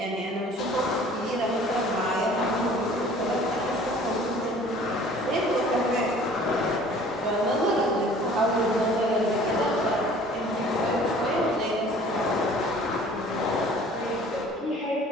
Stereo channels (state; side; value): normal; both; correlation 0.50